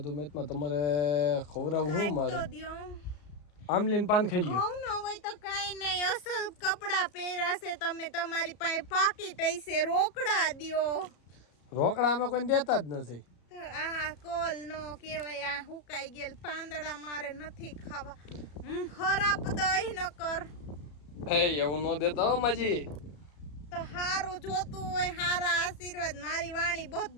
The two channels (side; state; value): right; late; 34 ms